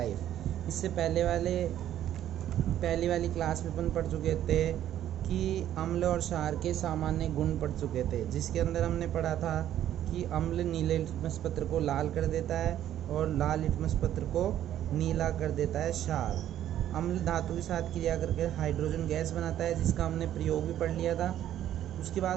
इससे पहली वाली क्लास में अपन पढ़ चुके थे कि अम्ल और क्षार के सामान्य गुण पढ़ चुके थे, जिसके अंदर हमने पढ़ा था कि अम्ल नीले लिटमस पत्र को लाल कर देता है और लाल लिटमस पत्र को नीला कर देता है क्षार। अम्ल धातु के साथ क्रिया करके हाइड्रोजन गैस बनाता है, जिसका हमने प्रयोग भी पढ़ लिया था। उसके बाद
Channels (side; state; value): left; quieter; 11.5 dB